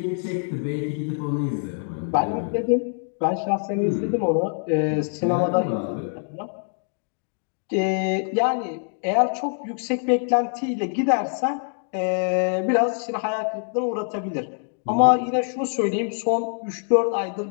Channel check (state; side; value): silent; right; 62 dB below the other